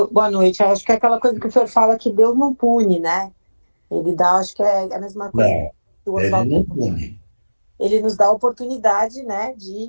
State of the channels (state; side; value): inverted; both; correlation -1.00